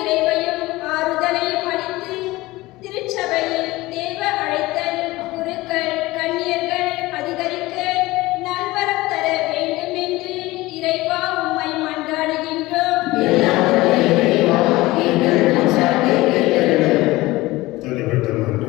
ஆறுதலையும் அளித்து திருச்சபையில் தேவ அழைத்தல், குருக்கள், கன்னியர்கள் அதிகரிக்க நல்வரம் தர வேண்டும் என்று இறைவா உம்மை மன்றாடுகின்றோம். தனிப்பட்ட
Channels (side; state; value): right; quieter; 19.5 dB